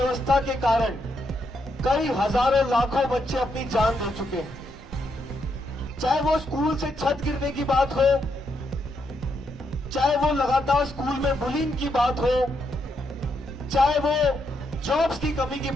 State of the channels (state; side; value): normal; both; correlation 0.79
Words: के कारण कई हजारों लाखों बच्चे अपनी जान दे चुके हैं। चाहे वो स्कूल से छत गिरने की बात हो, चाहे वो लगातार स्कूल में बुलिंग की बात हो, चाहे वो जॉब्स की कमी की